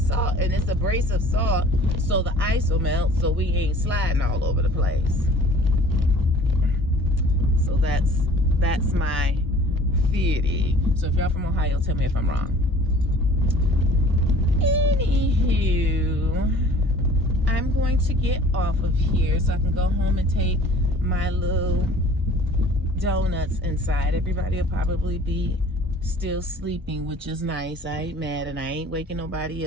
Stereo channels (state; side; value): normal; both; correlation 0.49